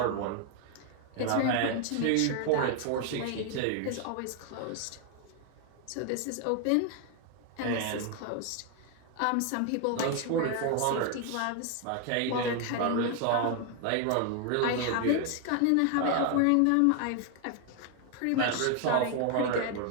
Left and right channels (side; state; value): both; different; correlation 0.01